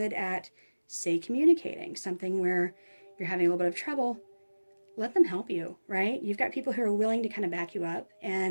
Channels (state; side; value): inverted; both; correlation -1.00